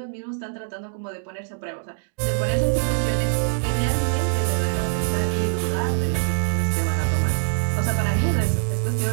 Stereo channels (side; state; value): left; silent; digital silence